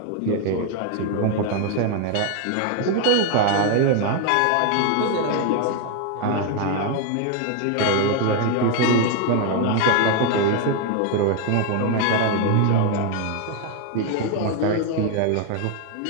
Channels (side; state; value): both; different; correlation 0.01